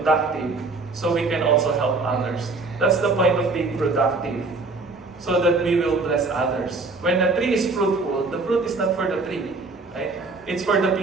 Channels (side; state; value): left; quieter; 3.7 dB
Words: so we can also help others. That's the point of being productive, so that we will bless others. When a tree is fruitful, the fruit is not for the tree, right? It's for the